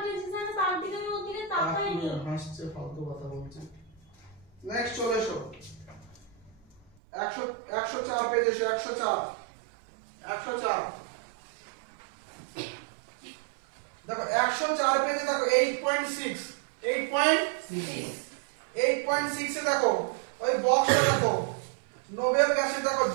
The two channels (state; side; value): drops out; left; at 6.9 s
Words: হাসছে ফালতু কথা বলছে। নেক্সট চলে এসো 104 পেজ এসো 104 দেখো 104 পেজে দেখো 8.6 8.6 এ দেখো ওই বক্সটা দেখো নোবেল গ্যাসে দেখো